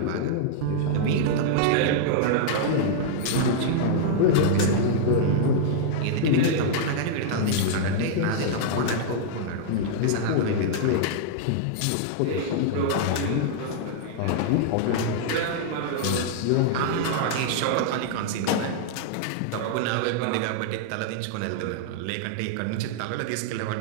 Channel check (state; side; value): different; both; correlation -0.01